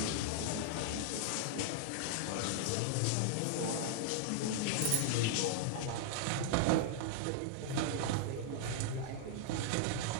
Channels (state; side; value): different; both; correlation -0.01